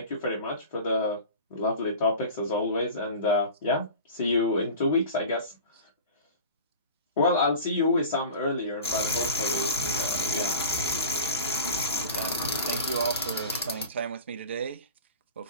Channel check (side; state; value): both; inverted; correlation -0.36